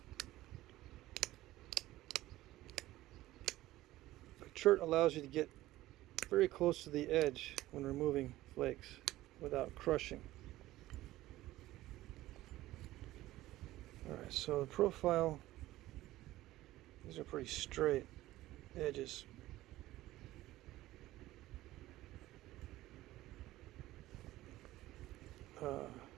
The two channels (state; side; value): quieter; left; 16.2 dB